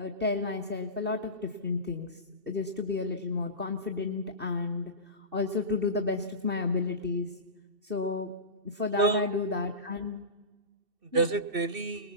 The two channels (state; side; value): late; left; 2.7 ms